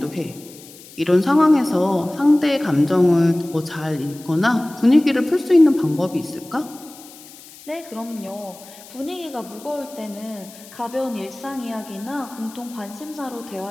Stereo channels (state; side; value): noise; left; hiss, 20 dB below the sound